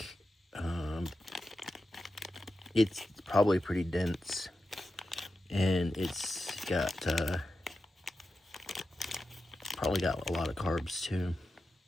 It's probably pretty dense, and it's got probably got a lot of carbs too.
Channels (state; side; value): normal; both; correlation 0.91